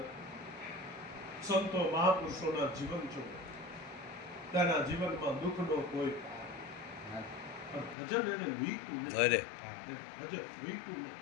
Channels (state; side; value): drops out; right; at 8.0 s